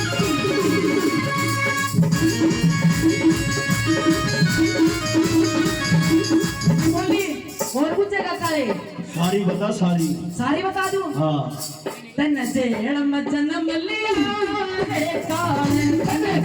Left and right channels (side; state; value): both; identical; correlation 1.00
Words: और कुछ जगह काले सारी बता सारी। सारी बता दूं? हाँ तन जेड़ में जन्म लिया है काले, तन